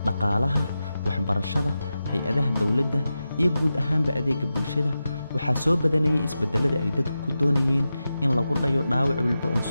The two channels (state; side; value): inverted; both; correlation -0.91